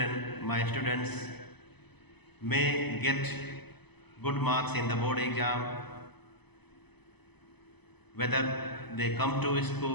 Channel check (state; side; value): late; right; 0.99 ms